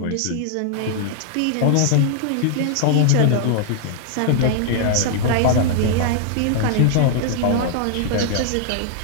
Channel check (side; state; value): both; different; correlation -0.01